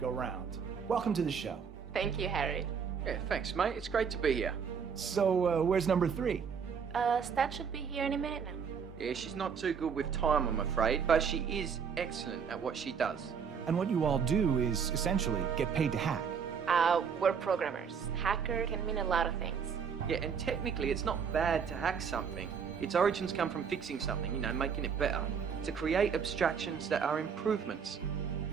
go round. Welcome to the show. Thank you, Harry. Yeah, thanks, mate. It's great to be here. So, where's number 3? Stat should be here any minute now. Yeah, she's not too good with time, I'm afraid, but she is excellent at what she does. And what you all do is, essentially, get paid to hack. We're programmers. Hacker can mean a lot of things. Yeah, and technically it's not bad to hack something. Its origins come from fixing something, making it better. To create abstractions that are improvements.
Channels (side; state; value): left; quieter; 6.7 dB